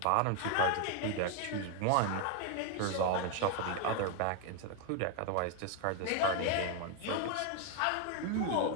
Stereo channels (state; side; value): different; both; correlation 0.01